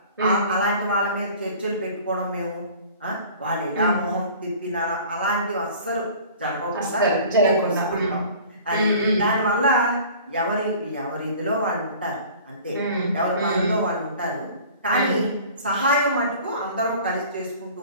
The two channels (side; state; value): both; inverted; correlation -0.46